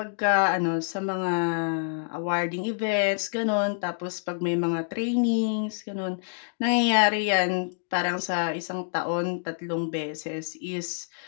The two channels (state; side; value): silent; right; digital silence